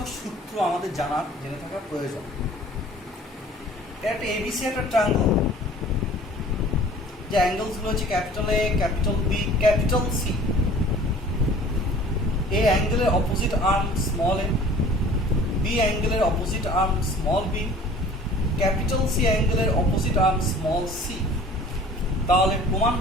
সূত্র আমাদের জেনে থাকার প্রয়োজন। একটা এবিসি একটা ট্রায়াঙ্গল, যে অ্যাঙ্গেলসগুলো হচ্ছে capital A, capital B, capital C. A অ্যাঙ্গেলের opposite arm small a, B অ্যাঙ্গেলের opposite arm small b, capital C অ্যাঙ্গেলের অপোজিট আর্ম স্মল সি। তাহলে প্রমাণ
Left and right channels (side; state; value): both; normal; correlation 0.48